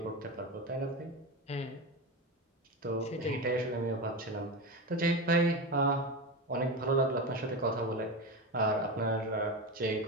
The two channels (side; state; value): both; normal; correlation 0.20